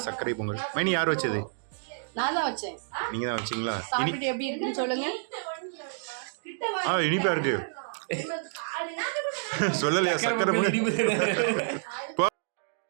சர்க்கரை பொங்கல். மைனி யார் வச்சது? நான் தான் வச்சேன். நீங்க தான் வச்சீங்களா? சாப்பிட்டு எப்படி இருக்குன்னு சொல்லுங்க. இனிப்பா இருக்கு. சொல்லலையா சர்க்கரை பொங்கல்?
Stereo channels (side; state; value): left; silent; digital silence